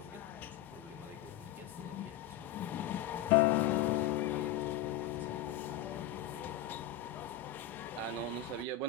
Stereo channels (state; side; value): quieter; right; 10.3 dB